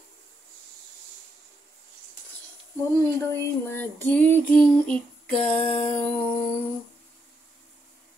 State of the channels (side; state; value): both; normal; correlation 0.80